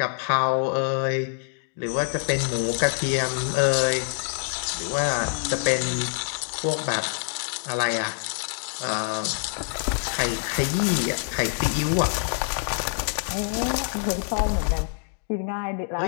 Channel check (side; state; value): right; silent; 61 dB below the other